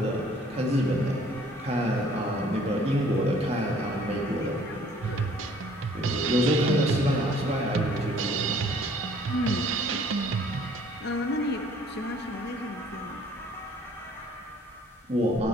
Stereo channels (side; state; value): both; normal; correlation 0.57